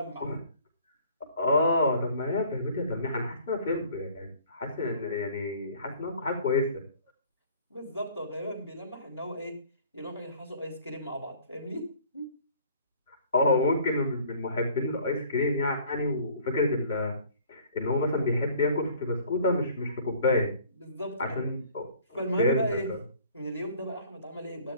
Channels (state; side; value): inverted; both; correlation -0.53